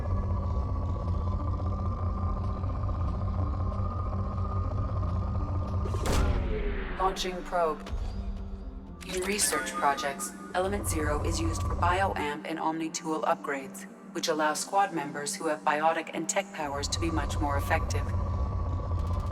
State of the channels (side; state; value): both; identical; correlation 1.00